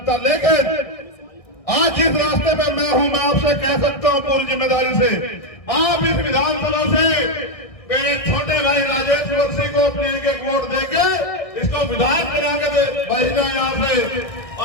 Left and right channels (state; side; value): late; right; 1.6 ms